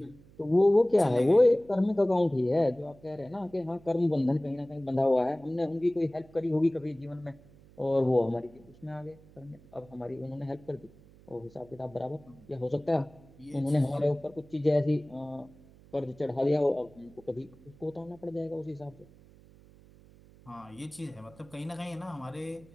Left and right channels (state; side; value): noise; right; hum, 24 dB below the sound